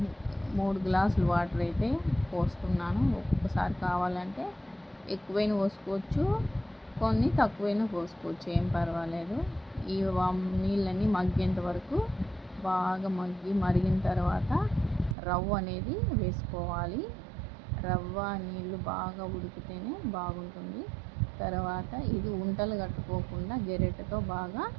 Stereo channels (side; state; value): left; drops out; at 15.2 s